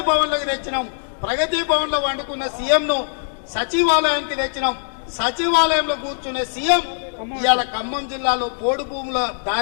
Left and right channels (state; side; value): silent; right; digital silence